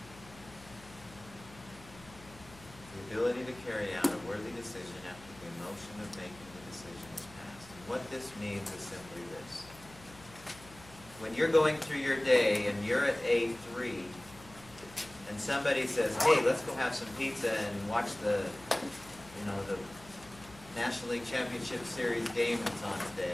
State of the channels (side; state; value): left; noise; hum, 20 dB below the sound